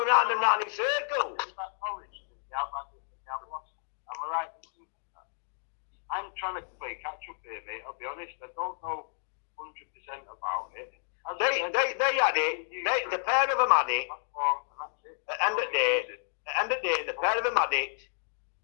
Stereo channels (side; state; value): right; silent; digital silence